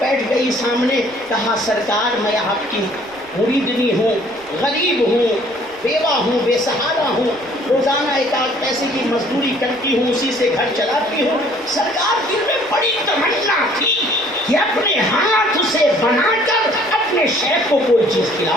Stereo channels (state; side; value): noise; right; rumble, 28 dB below the sound